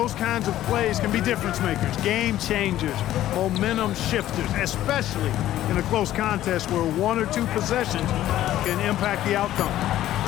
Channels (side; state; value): right; quieter; 13.4 dB